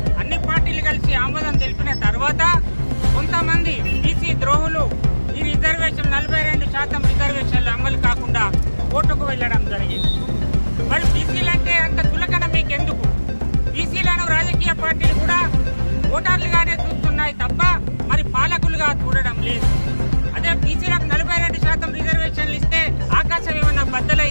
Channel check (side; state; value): both; inverted; correlation -1.00